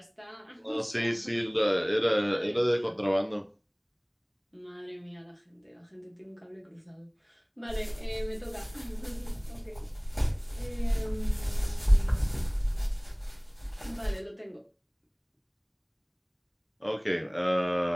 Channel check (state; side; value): identical; both; correlation 1.00